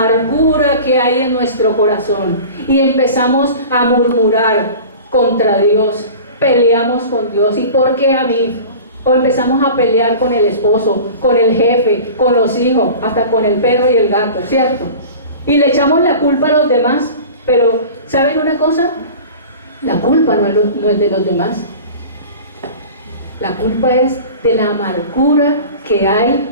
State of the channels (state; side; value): inverted; both; correlation -0.38